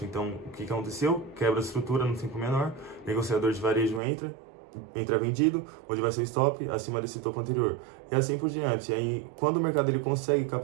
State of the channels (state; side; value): drops out; left; at 4.0 s